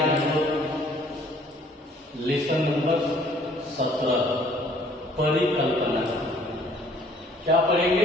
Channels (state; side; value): normal; both; correlation 0.58